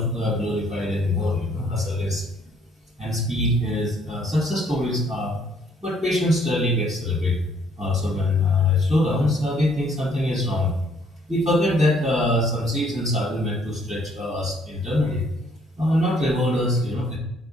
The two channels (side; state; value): both; normal; correlation 0.64